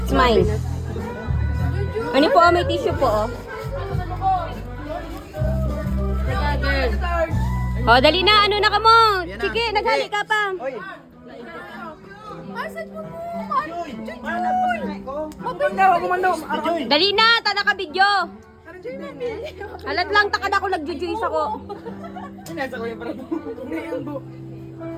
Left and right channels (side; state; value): both; identical; correlation 1.00